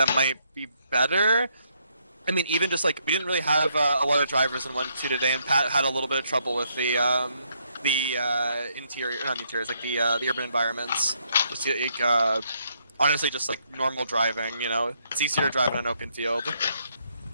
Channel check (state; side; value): inverted; both; correlation -0.73